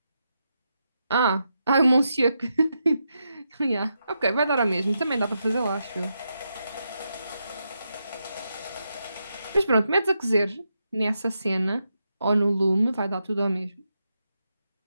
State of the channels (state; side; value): inverted; both; correlation -0.85